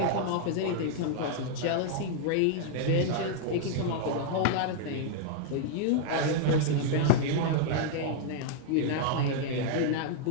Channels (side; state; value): both; different; correlation -0.01